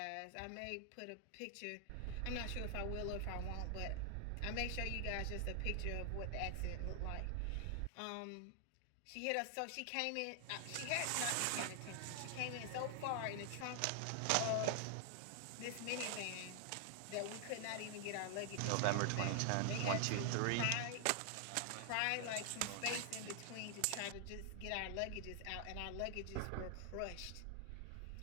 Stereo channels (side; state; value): both; different; correlation 0.00